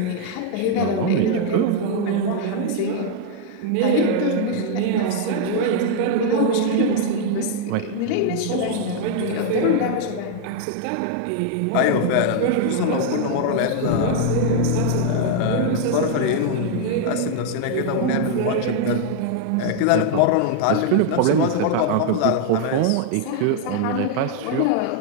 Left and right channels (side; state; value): both; different; correlation 0.00